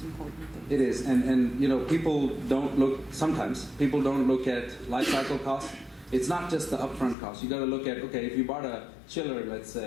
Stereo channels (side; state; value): right; drops out; at 7.2 s